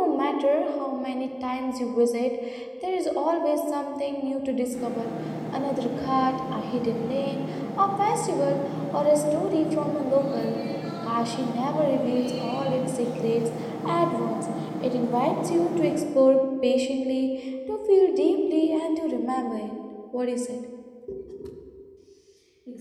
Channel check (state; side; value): identical; both; correlation 1.00